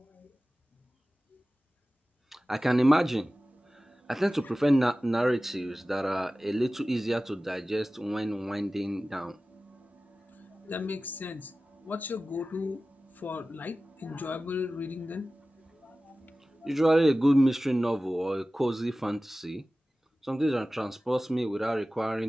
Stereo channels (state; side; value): normal; both; correlation 0.96